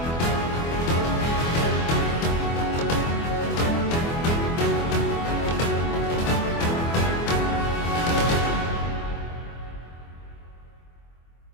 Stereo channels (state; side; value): late; right; 24 ms